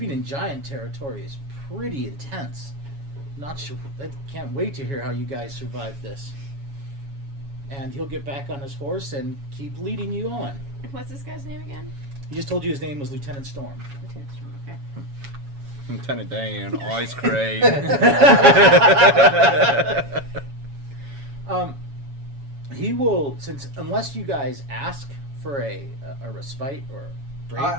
in giant territory is pretty intense. Not sure. I can't wait to hear how you guys survive this. And he'll get back on his horse and keep leading you on. What's this guy's name again? He just told you his name was Lieutenant Storm. Lieutenant Storm. Okay. Lieutenant Dan, ice cream. He will, unless you guys ask for a respite or a break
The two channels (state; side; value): late; left; 7.2 ms